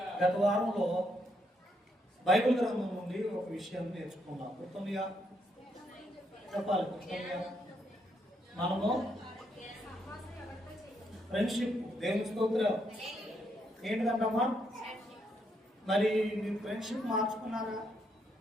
గత వారంలో బైబిల్ గ్రంథం నుండి ఒక విషయాన్ని నేర్చుకున్నాం. గుర్తుందిగా? చెప్పాలి. గుర్తుందిగా? మనము ఫ్రెండ్షిప్. దేవుని స్తోత్రం. ఏంటిదంటమ్మా? మరి మీరు ఫ్రెండ్షిప్ మార్చుకున్నారా?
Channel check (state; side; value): normal; both; correlation 0.76